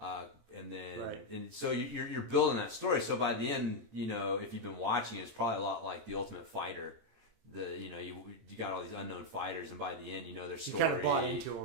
then, and so you're building that story. So by the end, you know, if you've been watching it, it's probably a lot like The Ultimate Fighter. You got all these unknown fighters, and by the end, you know their story. You kind of bought into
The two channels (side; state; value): left; late; 18 ms